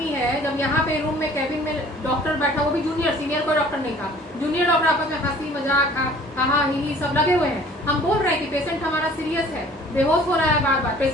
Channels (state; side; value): normal; both; correlation 0.51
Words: है, जब यहाँ पे रूम में कैबिन में डॉक्टर बैठा, वो भी जूनियर, सीनियर कोई डॉक्टर नहीं था, जूनियर डॉक्टर आपस में हंसी मजाक हा ही सब लगे हुए हैं। हम बोल रहे हैं कि पेशेंट हमारा सीरियस है, बेहोश हो रहा है बार बार,